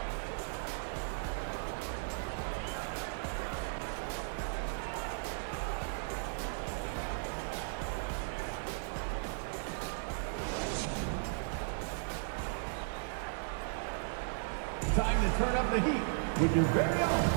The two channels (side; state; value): left; silent; 54 dB below the other